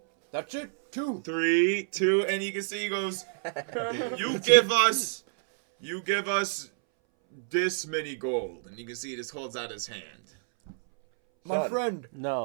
That's it. 2. 3, 2, and you can see he goes, you give us this many gold. And you can see he just holds out his hand. My Son. friend,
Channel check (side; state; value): left; silent; 59 dB below the other